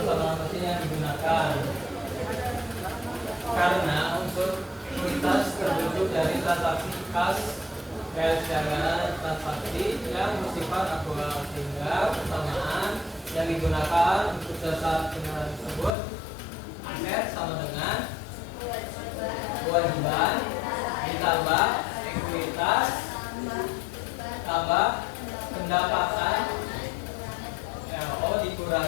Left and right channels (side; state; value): right; drops out; at 15.9 s